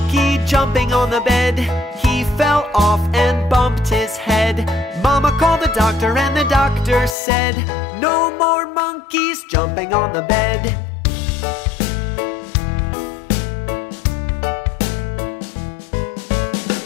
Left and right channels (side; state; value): right; drops out; at 7.2 s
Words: jumping on the bed, he fell off and bumped his head. Mama called the doctor and the doctor said, no more monkeys jumping on the bed.